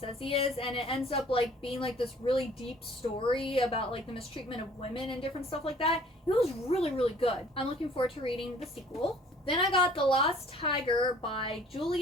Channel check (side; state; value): both; normal; correlation 0.54